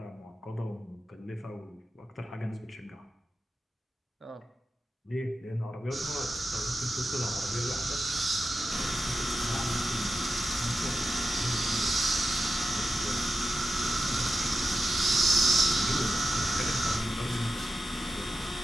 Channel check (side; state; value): both; normal; correlation 0.90